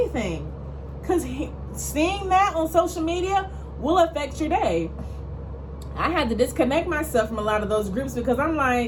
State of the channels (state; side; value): identical; both; correlation 1.00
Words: Because seeing that on social media will affect your day. I had to disconnect myself from a lot of those groups because I'm